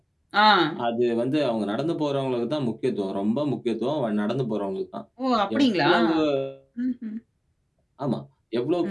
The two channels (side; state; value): both; identical; correlation 1.00